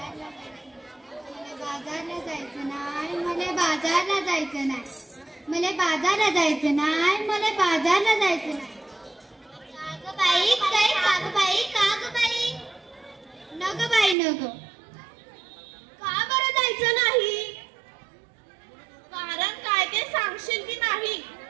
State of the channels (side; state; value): left; drops out; at 14.2 s